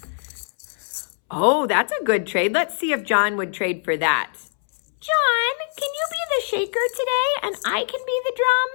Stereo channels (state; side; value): silent; right; 64 dB below the other